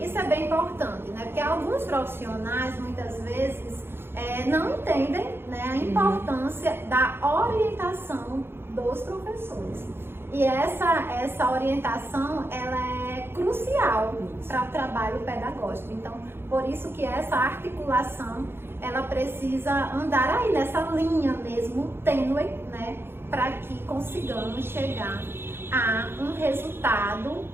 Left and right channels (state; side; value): late; left; 0.11 ms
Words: é bem importante, né? Porque alguns profissionais, muitas vezes, não entendem, né, a importância da orientação dos professores. E essa orientação, ela é crucial para o trabalho pedagógico. Então, por isso que essa articulação, ela precisa andar aí nessa linha mesmo, tênue, né? Para que consigamos chegar a um resultado